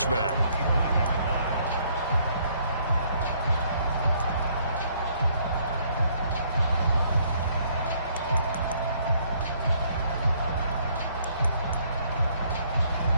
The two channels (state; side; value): inverted; both; correlation -0.66